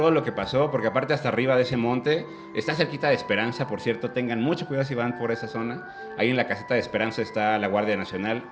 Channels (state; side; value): identical; both; correlation 1.00